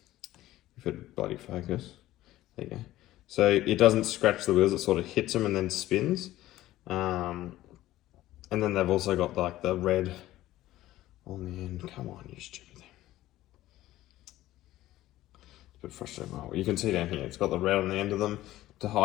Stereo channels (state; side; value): quieter; right; 15.3 dB